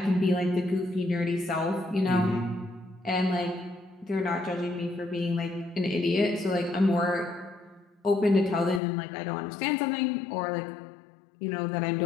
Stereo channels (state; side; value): drops out; right; at 8.8 s